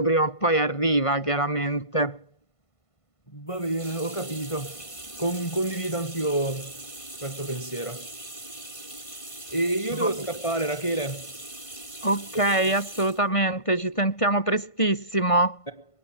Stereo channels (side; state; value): right; late; 1.5 ms